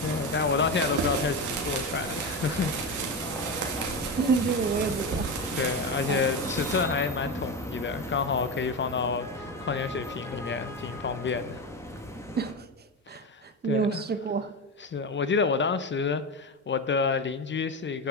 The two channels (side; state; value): both; normal; correlation 0.18